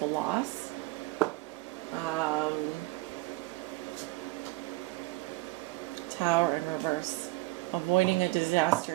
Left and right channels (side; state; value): left; quieter; 21.3 dB